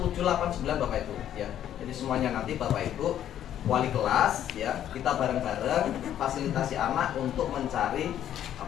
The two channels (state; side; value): quieter; right; 10.8 dB